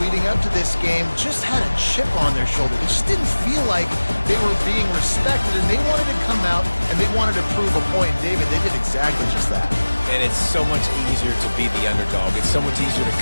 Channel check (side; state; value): both; inverted; correlation -1.00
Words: leading up to this game just had a chip on their shoulder. They just didn't feel like they were being respected, and they wanted to come out, and they wanted to prove a point. And David, they did exactly just that. And it's so much easier to be the underdog. It's so much easier to